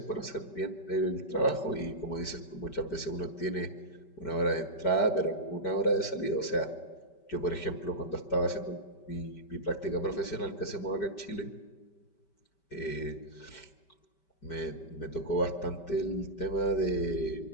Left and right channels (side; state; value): right; late; 5.2 ms